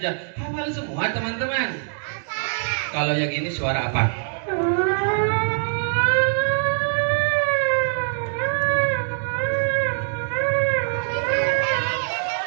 Hafal semua teman-teman. Kalau yang ini suara apa?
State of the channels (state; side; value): silent; left; digital silence